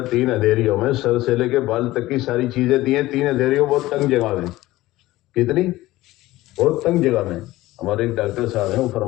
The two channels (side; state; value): right; quieter; 17.4 dB